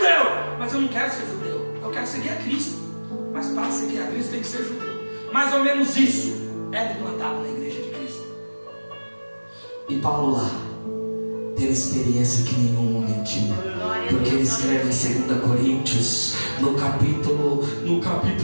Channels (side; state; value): both; inverted; correlation -1.00